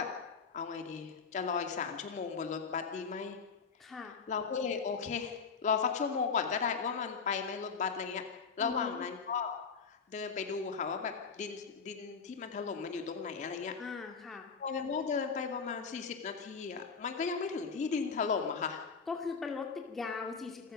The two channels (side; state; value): right; quieter; 5.5 dB